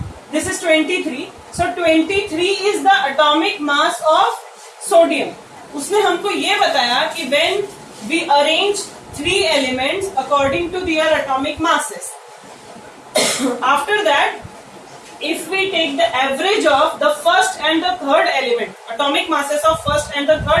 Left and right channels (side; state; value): both; identical; correlation 1.00